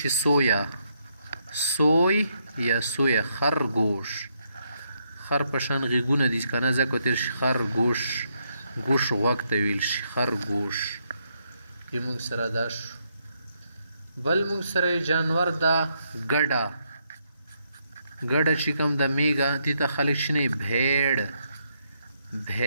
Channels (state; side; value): inverted; both; correlation -0.76